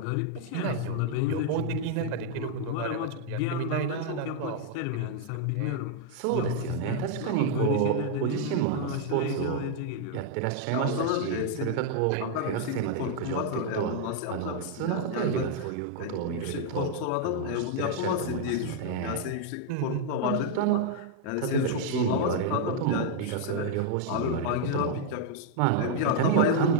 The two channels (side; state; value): both; different; correlation 0.00